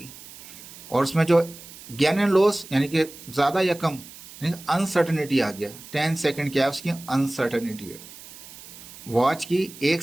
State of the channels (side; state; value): right; noise; hiss, 17 dB below the sound